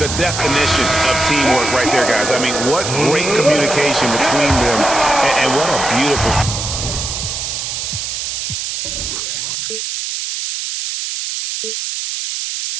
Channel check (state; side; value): noise; right; hiss, 4 dB below the sound